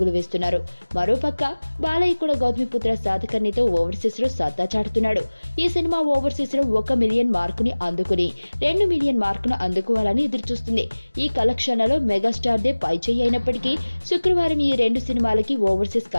వేస్తున్నారు. మరోపక్క బాలయ్య కూడా గౌతమిపుత్ర శాతకర్ణితో ఓవర్సీస్ లో సత్తా చాటుతున్నాడు. ఈ సినిమా ఓవర్సీస్ లో 1 మిలియన్ మార్కుని అందుకుని 2 మిలియన్ మార్కును అందుకోవాలని ఎదురుచూస్తుంది. ఈ కలెక్షన్లలో మెగాస్టార్ దే పై చేయి అయినప్పటికీ శుక్రవారం ఈ రెండు సినిమాలకి ఓవర్సీస్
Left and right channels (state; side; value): inverted; both; correlation -1.00